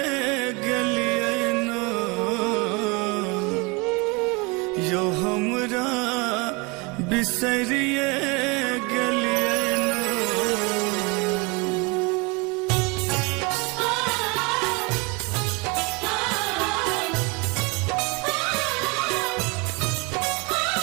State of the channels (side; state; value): left; quieter; 27.7 dB